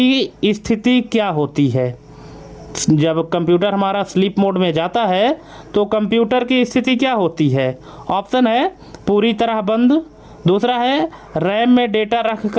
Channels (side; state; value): both; identical; correlation 1.00